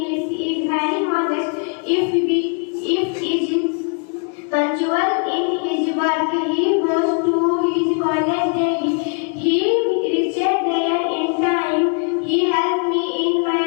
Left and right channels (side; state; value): right; quieter; 39.5 dB